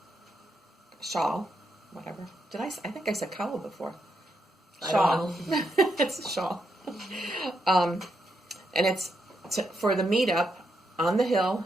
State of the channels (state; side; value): normal; both; correlation 0.81